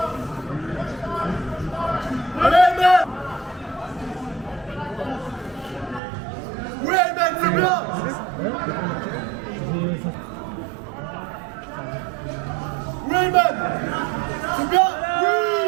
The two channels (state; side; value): drops out; left; at 6.0 s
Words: Allez, Elmen! Oui, Elmen, c'est bien! Oui, Elmen! C'est bien! Oui!